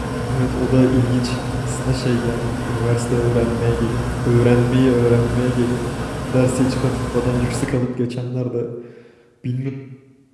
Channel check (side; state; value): both; identical; correlation 1.00